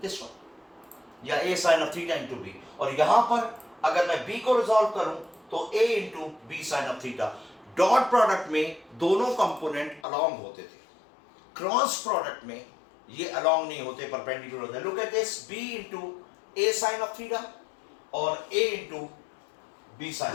this one, या A sin of theta into B. और यहां पर अगर मैं B को रिजॉल्व करूं तो A into B sin of theta. Dot product में दोनों कंपोनेंट अलोंग होते थे. क्रॉस प्रोडक्ट में ये अलोंग नहीं होते, परपेंडिकुलर होते हैं. Look at this, B into A sine of theta और A into B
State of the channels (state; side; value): drops out; right; at 10.0 s